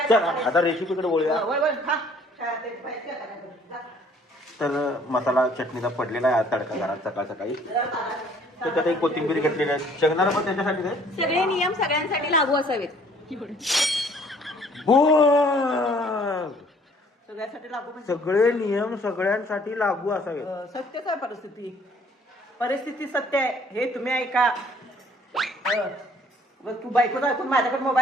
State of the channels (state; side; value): normal; both; correlation 0.58